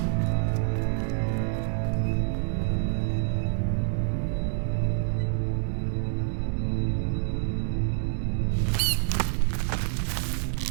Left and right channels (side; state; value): left; silent; digital silence